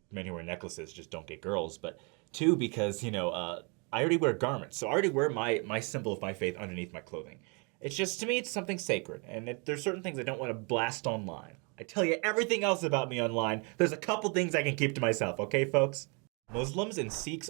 men who wear necklaces just don't get girls. But two, because, I already wear garments. So I already wear my symbol of my faith underneath my clothing. It's just, to me, it's something sacred. And there's certain things I don't want to blast online. I tell you everything else about me online. There's a couple things I can keep to myself, okay, folks? Muslims and Sikhs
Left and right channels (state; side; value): quieter; left; 33.2 dB